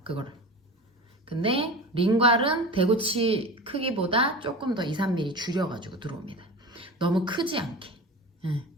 그거를. 근데 링괄은 대구치 크기보다 조금 더 2, 3mm 줄여가지고 들어옵니다. 너무 크지 않게.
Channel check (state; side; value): normal; both; correlation 0.32